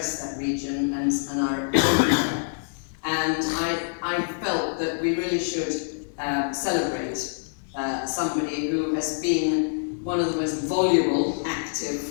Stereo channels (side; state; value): right; silent; digital silence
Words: that region and are everywhere. And I felt that we really should celebrate somebody who has been one of the most voluble,